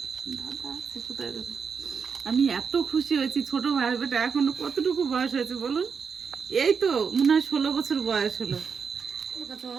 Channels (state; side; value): quieter; left; 6.0 dB